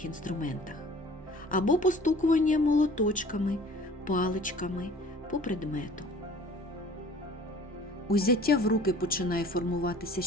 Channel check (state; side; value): normal; both; correlation 0.49